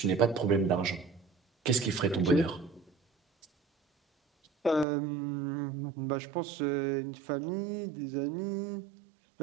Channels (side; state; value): left; drops out; at 4.9 s